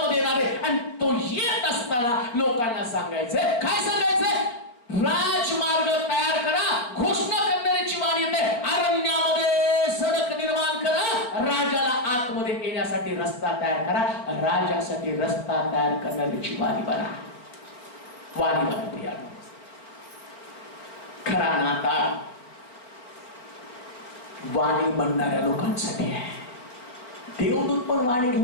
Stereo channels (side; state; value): right; late; 4.3 ms